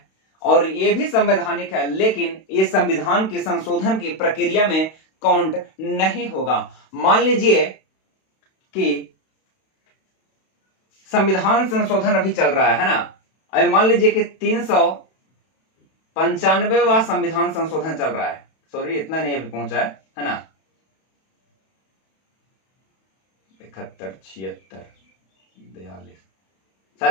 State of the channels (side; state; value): right; late; 32 ms